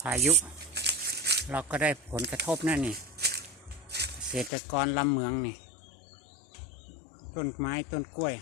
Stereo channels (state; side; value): drops out; right; at 4.5 s